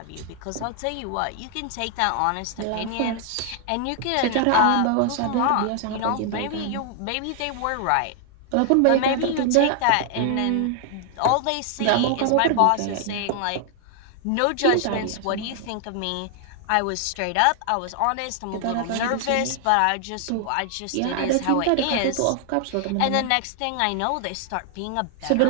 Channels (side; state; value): both; different; correlation 0.00